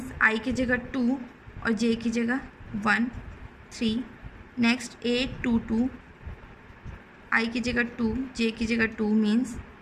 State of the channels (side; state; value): both; identical; correlation 1.00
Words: i की जगह 2 और j की जगह 1, 3। नेक्स्ट a22 i की जगह 2 j की जगह 2 मीन्स